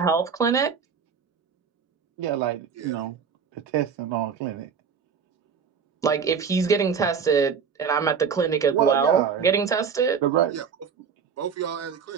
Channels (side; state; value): left; quieter; 6.5 dB